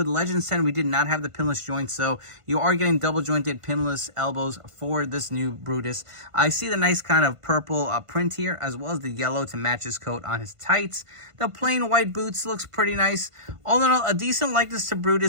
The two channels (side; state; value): left; late; 1.5 ms